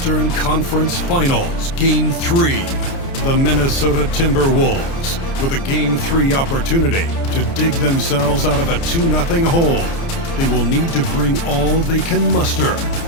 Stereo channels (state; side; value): late; right; 29 ms